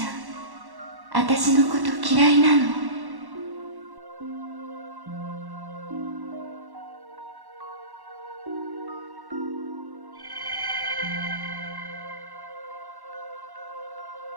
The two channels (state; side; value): late; left; 1.1 ms